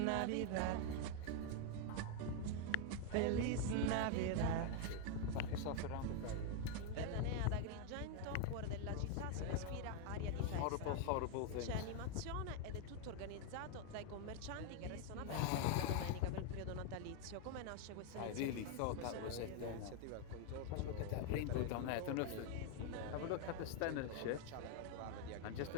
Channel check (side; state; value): both; different; correlation 0.00